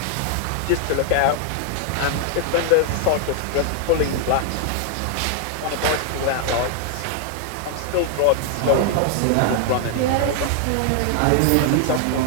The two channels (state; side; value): different; both; correlation 0.00